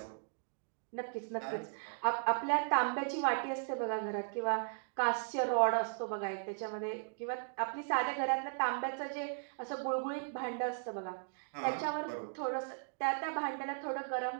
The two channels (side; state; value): left; silent; digital silence